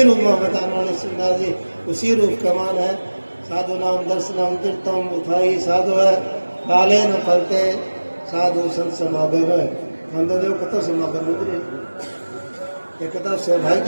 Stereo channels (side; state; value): both; inverted; correlation -1.00